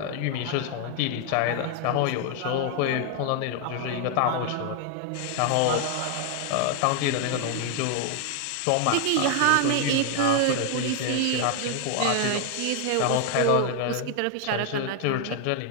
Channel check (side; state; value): both; different; correlation 0.00